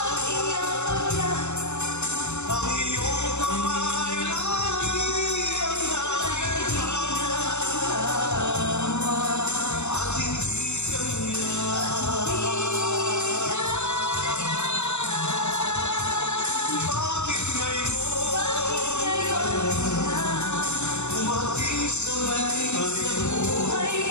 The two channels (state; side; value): late; right; 0.82 ms